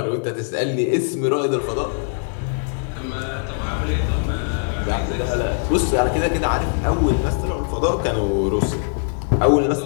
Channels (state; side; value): silent; right; digital silence